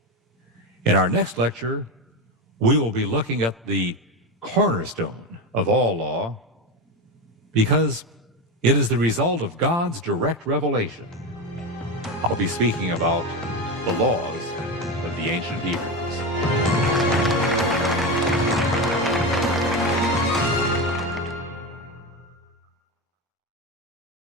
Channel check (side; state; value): both; normal; correlation 0.17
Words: In our next lecture, we will be looking at the cornerstone of all law, because it is the result of God's direct revelation. I'll be speaking about the laws of the ancient Hebrews.